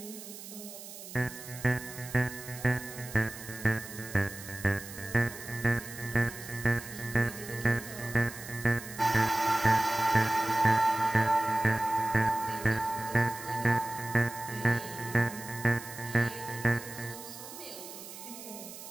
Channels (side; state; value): right; noise; hiss, 13 dB below the sound